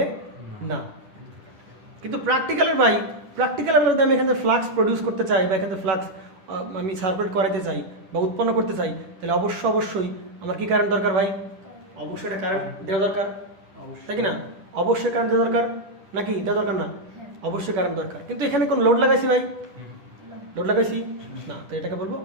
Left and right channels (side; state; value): left; late; 10 ms